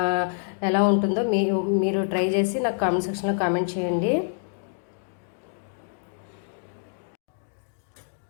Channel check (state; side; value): silent; right; digital silence